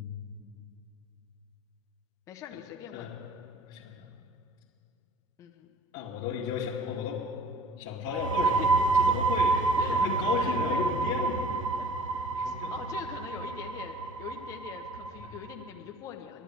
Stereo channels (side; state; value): both; normal; correlation 0.47